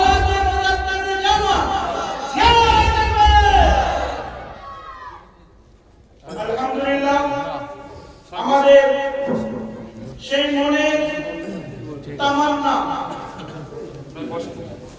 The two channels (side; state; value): both; identical; correlation 1.00